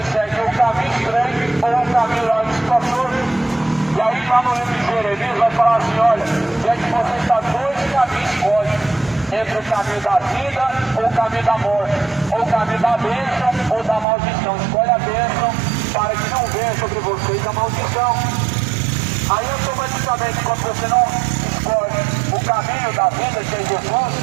seguem o caminho estreito ou o caminho lá espaçoso. E aí lá no livro de Jeremias vai falar assim, olha, gente, você está dois caminhos escolhe, entre o caminho da vida ou o caminho da morte, ou o caminho da bênção ou da maldição. Escolhe a bênção para que não venha sobre vocês a maldição. Aí automaticamente, quando você não escolhe o caminho da vida, que é Jesus,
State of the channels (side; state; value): left; drops out; at 14.1 s